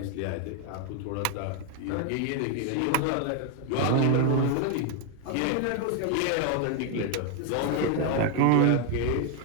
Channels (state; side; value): different; both; correlation 0.01